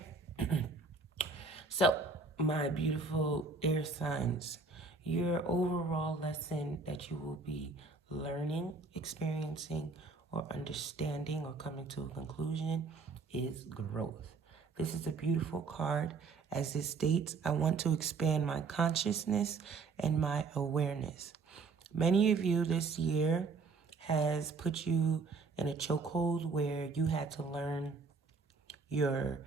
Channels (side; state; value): left; quieter; 4.3 dB